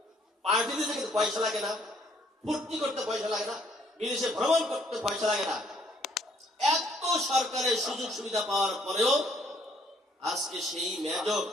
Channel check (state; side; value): normal; both; correlation 0.64